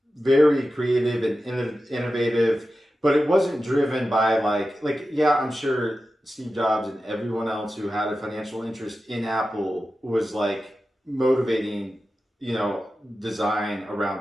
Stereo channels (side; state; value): both; normal; correlation 0.93